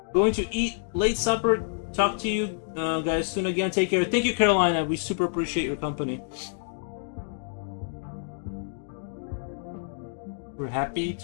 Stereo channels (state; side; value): silent; right; digital silence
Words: Going to eat late supper. Talk to you guys soon again. Take care. Thank you, Carolina. We super appreciate your company. We're happy